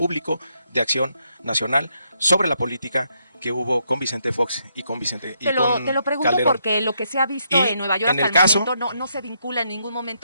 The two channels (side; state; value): both; inverted; correlation -0.77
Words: de Acción Nacional sobre la política que hubo con Vicente Fox y con Vicente y te lo pregunto Calderón. Porque lo que se ha visto en Nueva York hasta el momento no se vincula en ningún